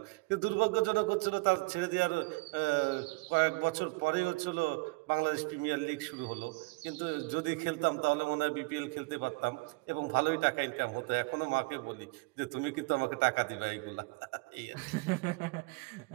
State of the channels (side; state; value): left; quieter; 26.5 dB